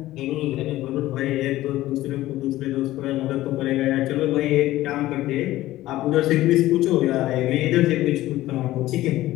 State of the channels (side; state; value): right; quieter; 15.9 dB